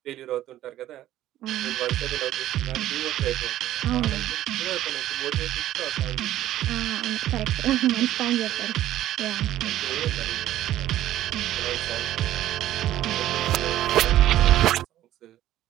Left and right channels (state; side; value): quieter; left; 13.5 dB